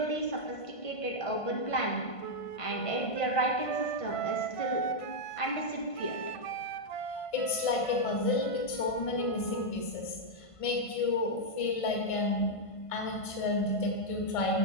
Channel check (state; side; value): late; right; 1.5 ms